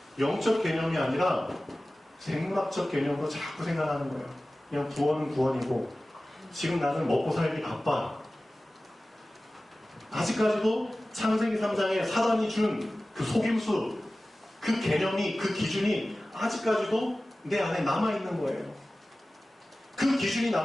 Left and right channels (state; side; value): normal; both; correlation 0.97